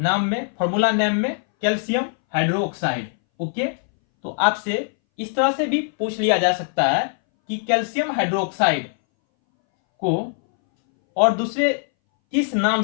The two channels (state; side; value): silent; right; 62 dB below the other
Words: में, फॉर्मूला नेम में? Calcium hydroxide. ओके, तो आपसे इस तरह से भी पूछ लिया जा सकता है कि कैल्शियम हाइड्रोक्साइड को और दूसरे किस नाम